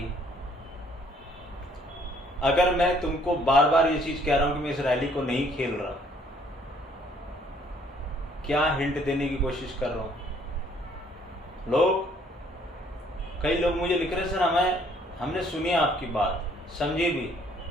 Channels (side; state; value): both; normal; correlation 0.62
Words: अगर मैं तुमको बार बार ये चीज कह रहा हूं कि मैं इस रैली को नहीं खेल रहा, क्या हिंट देने की कोशिश कर रहा हूं? कई लोग मुझे लिख रहे सर हमने सुनी आपकी बात, समझी भी,